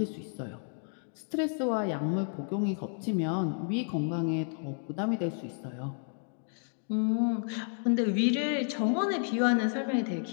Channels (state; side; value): silent; right; 57 dB below the other